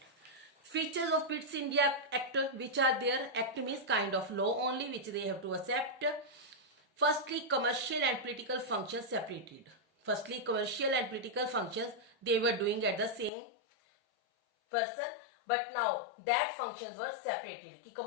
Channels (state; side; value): drops out; right; at 13.3 s